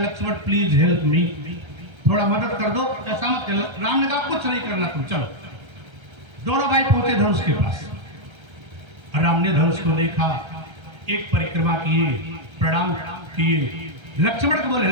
प्लीज हेल्प मी, थोड़ा मदद कर दो, ऐसा मत करो। राम ने कहा, कुछ नहीं करना, तुम चलो। दोनों भाई पहुंचे धनुष के पास। राम ने धनुष को देखा, एक परिक्रमा किए, प्रणाम किए। लक्ष्मण को बोले,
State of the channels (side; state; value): left; late; 1.3 ms